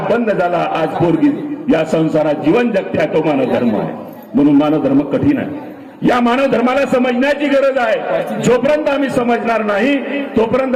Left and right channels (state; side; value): identical; both; correlation 1.00